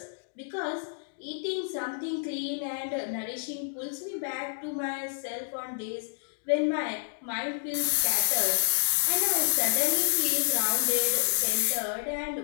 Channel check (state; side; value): silent; right; digital silence